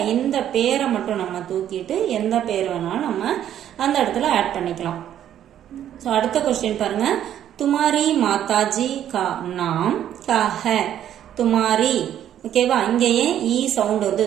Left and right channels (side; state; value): left; quieter; 10.7 dB